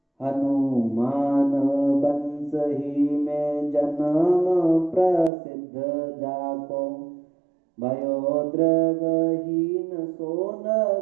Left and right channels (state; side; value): drops out; left; at 5.3 s